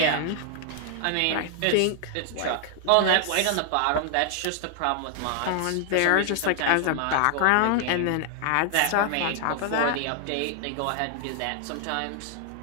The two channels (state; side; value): different; both; correlation 0.00